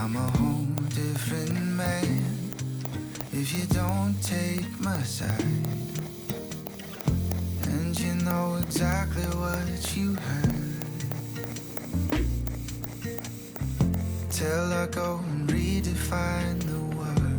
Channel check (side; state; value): both; identical; correlation 1.00